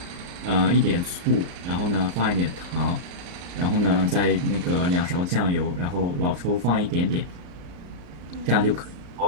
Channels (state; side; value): late; left; 34 ms